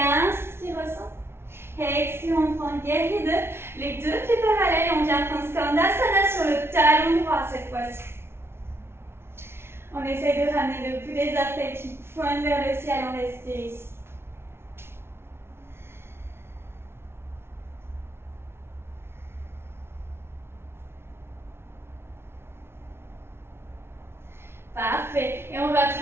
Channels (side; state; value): left; late; 0.12 ms